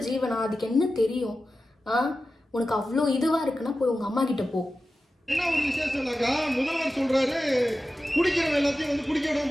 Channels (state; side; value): normal; both; correlation 0.93